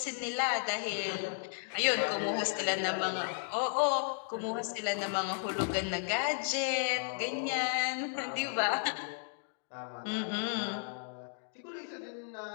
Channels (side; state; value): right; silent; digital silence